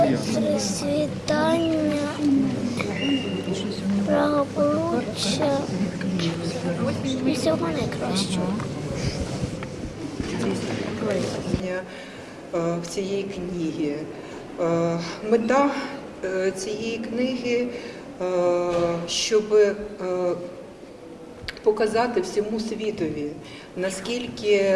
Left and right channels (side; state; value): both; identical; correlation 1.00